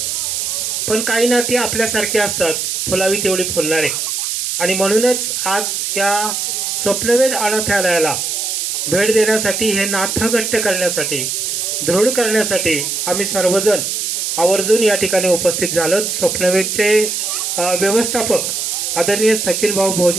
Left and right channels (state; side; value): noise; right; hiss, 1 dB below the sound